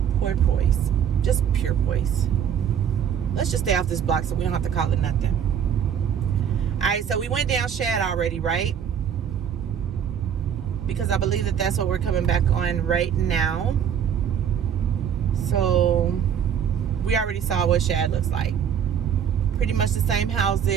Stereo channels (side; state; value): left; quieter; 8.4 dB